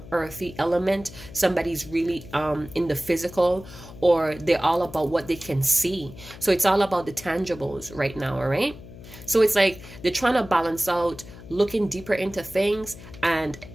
earthy element. Somebody's really in the physical, or they're all about what they can see. So it's all about the tangibles right now, all right? So it's like they're trying to balance out looking deeper into things and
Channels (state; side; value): noise; left; hum, 17 dB below the sound